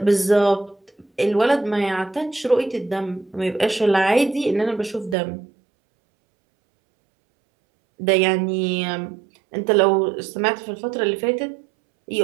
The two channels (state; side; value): drops out; left; at 5.2 s